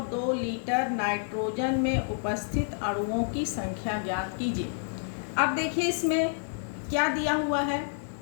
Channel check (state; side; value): silent; right; 59 dB below the other